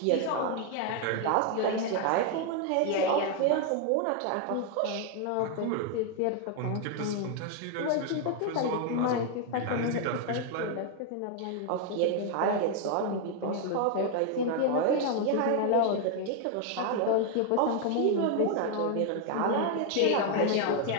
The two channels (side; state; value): both; different; correlation 0.01